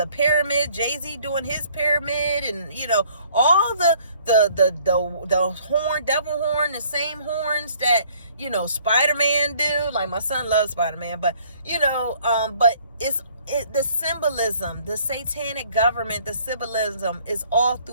pyramid, Jay-Z doing his pyramid, and all the horn, devil horn, the same horns that Spider-Man do. Like, my son loves Spider-Man, but but it's the symbolism, the satanic government, the symbolism is all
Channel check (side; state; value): both; inverted; correlation -0.59